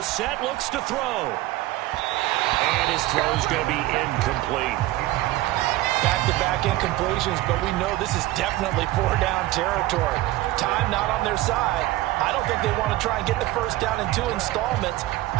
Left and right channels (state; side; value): quieter; left; 17.1 dB